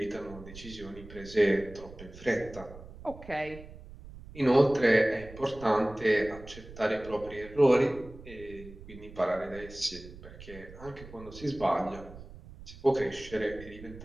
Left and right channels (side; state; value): right; noise; rumble, 16 dB below the sound